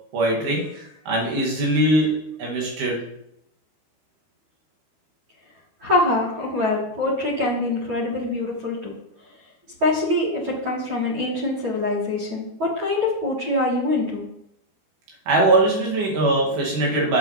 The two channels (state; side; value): late; left; 12 ms